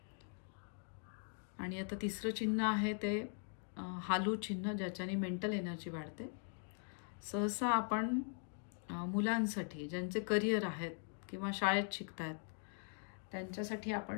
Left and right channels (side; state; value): right; silent; 50 dB below the other